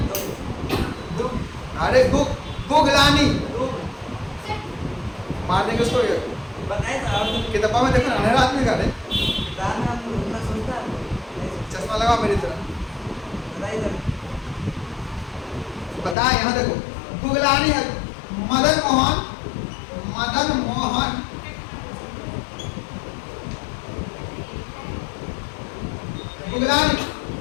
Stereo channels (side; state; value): right; drops out; at 16.2 s